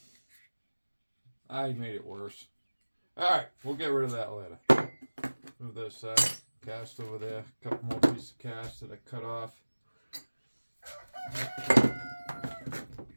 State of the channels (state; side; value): inverted; both; correlation -1.00